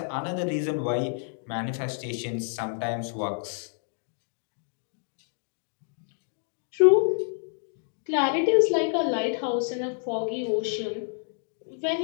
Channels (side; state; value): right; silent; 59 dB below the other